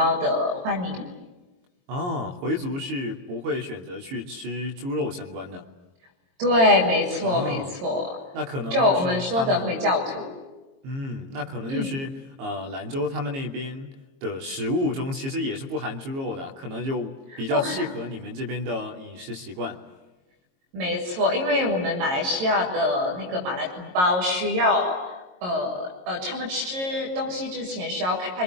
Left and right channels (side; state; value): left; late; 22 ms